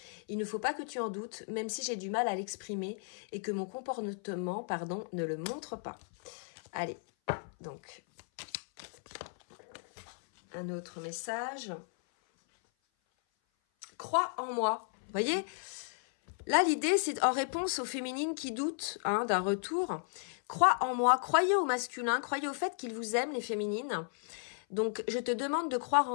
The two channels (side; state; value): right; silent; 55 dB below the other